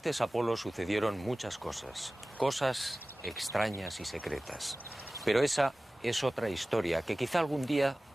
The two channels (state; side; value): normal; both; correlation 0.97